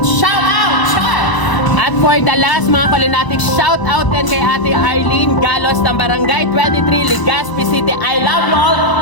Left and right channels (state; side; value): late; right; 1.0 ms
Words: Shoutout! Cheers! At for the last mga Kulinatics, shout out din kay Ate Arlene Galos ng Barangay 23, Legazpi City. I love you all.